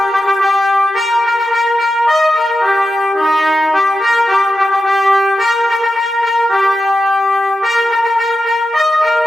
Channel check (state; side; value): normal; both; correlation 0.90